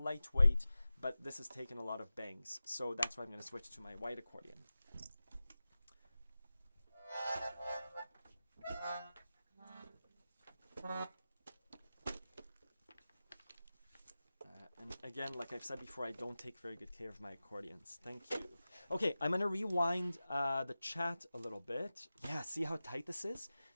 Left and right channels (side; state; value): both; inverted; correlation -0.95